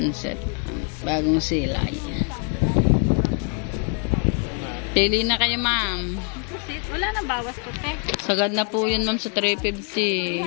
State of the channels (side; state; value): right; quieter; 37.7 dB